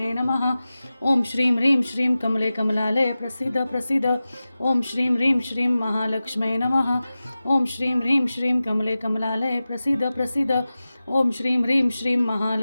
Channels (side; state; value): both; inverted; correlation -0.95